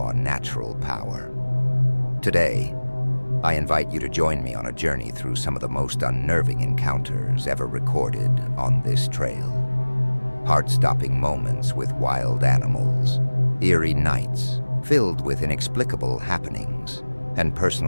natural power. Today, I invite you to join me on a journey through some of the most unnerving encounters ever recorded on this trail. Heart-stopping moments with wild animals, eerie nights filled with inexplicable happenings, and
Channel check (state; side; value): inverted; both; correlation -1.00